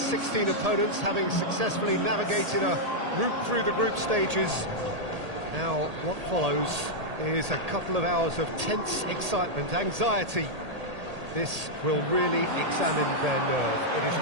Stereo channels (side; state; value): left; late; 1.8 ms